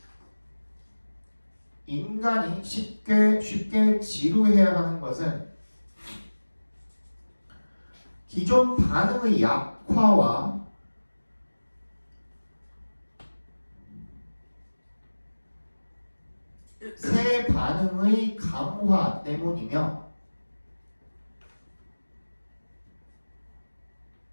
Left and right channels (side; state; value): both; inverted; correlation -1.00